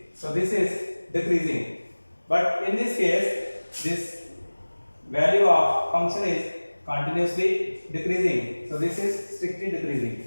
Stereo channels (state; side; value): inverted; both; correlation -1.00